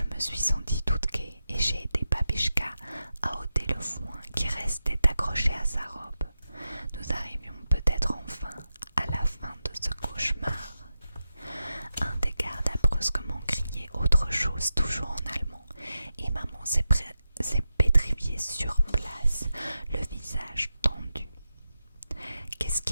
me suis sentie toute gaie et j'ai aidé Babichka à ôter le foin qui restait accroché à sa robe. Nous arrivions peut-être enfin à la fin de ce cauchemar. Un des gardes a brusquement crié autre chose, toujours en allemand, et maman s'est pétrifiée sur place, le visage tendu. Qu'est-ce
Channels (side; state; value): both; inverted; correlation -0.90